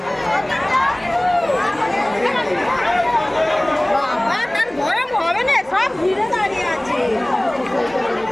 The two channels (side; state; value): right; noise; hum, 30 dB below the sound